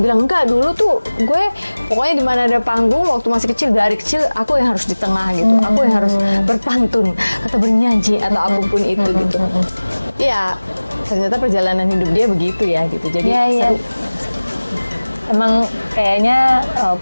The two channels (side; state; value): both; inverted; correlation -1.00